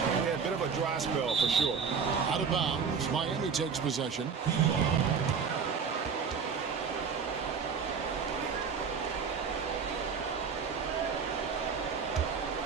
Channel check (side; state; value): left; quieter; 6.0 dB